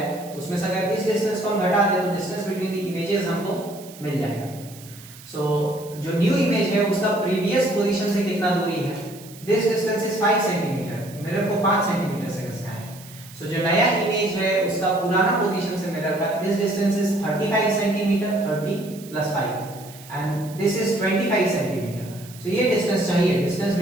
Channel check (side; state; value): right; noise; hiss, 19 dB below the sound